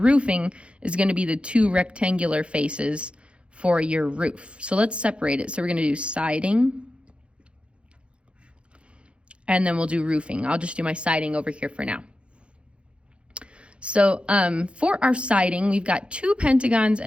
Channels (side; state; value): left; late; 0.059 ms